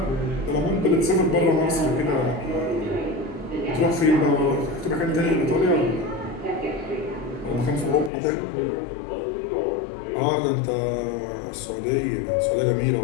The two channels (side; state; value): right; drops out; at 8.1 s